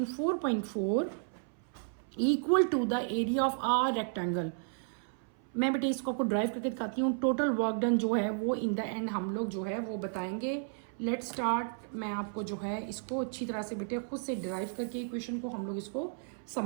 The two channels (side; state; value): left; silent; 56 dB below the other